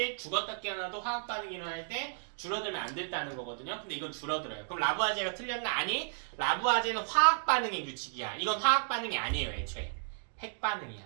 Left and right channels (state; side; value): silent; left; digital silence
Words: 죽었다 깨어나도 화학 반응이 일어날 때 줄어들면 안 된다는 거거든요. 근데 이건 줄어들어요. 그럼 라부아제가 틀렸나? 아니. 라부아제는 화학 반응의 규칙이야. 이건 화학 반응이 아니에요 애초에. 핵